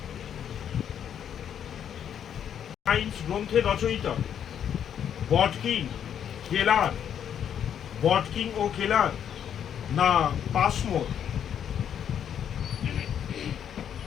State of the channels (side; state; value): right; quieter; 9.0 dB